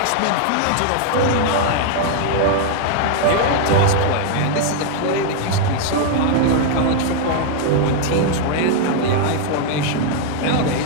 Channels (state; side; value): different; both; correlation 0.00